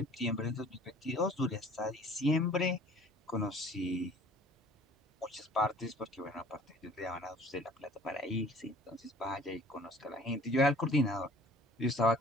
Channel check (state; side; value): normal; both; correlation 0.50